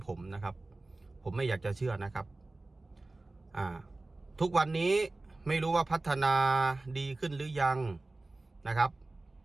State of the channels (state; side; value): quieter; left; 3.1 dB